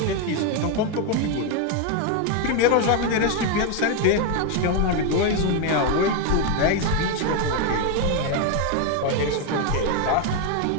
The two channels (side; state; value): both; different; correlation 0.01